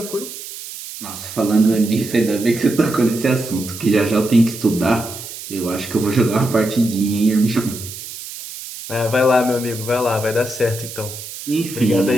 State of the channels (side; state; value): right; noise; hiss, 11 dB below the sound